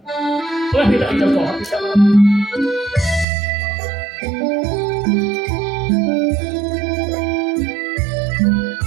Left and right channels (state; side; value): drops out; left; at 3.2 s